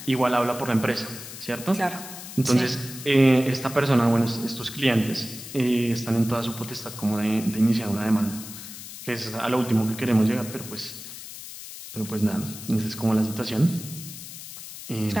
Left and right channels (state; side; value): noise; left; hiss, 12 dB below the sound